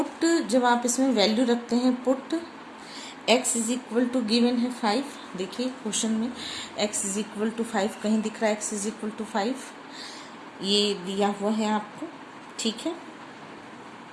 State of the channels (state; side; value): identical; both; correlation 1.00